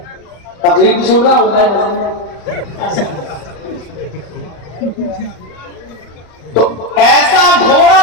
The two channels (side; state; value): right; late; 34 ms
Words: तकलीफ भी सुन रहा होता है। तो ऐसा घोड़ा